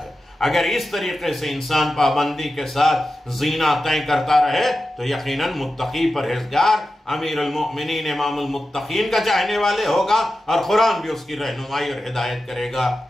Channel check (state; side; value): normal; both; correlation 0.92